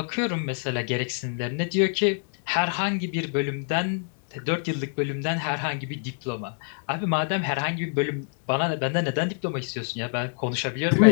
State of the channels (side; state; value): right; silent; 61 dB below the other